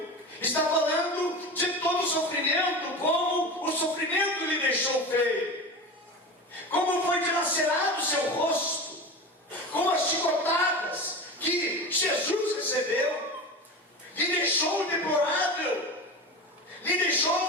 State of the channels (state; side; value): normal; both; correlation 0.29